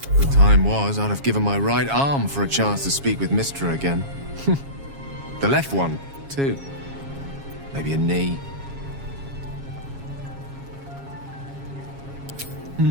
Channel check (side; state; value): left; late; 7.3 ms